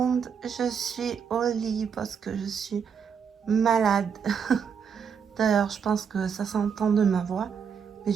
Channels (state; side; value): quieter; left; 6.9 dB